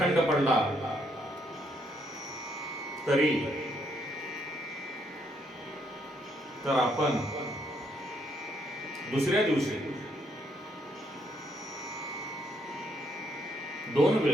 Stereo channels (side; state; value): both; normal; correlation 0.73